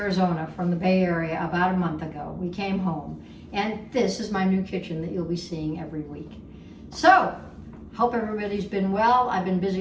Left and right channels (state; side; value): identical; both; correlation 1.00